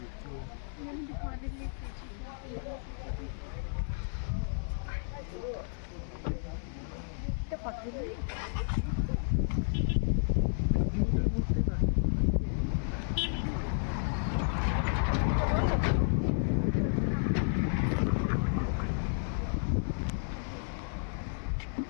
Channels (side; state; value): right; silent; 56 dB below the other